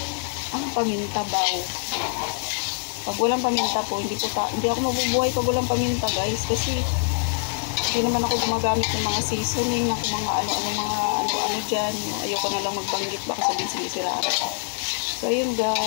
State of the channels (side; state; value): right; silent; digital silence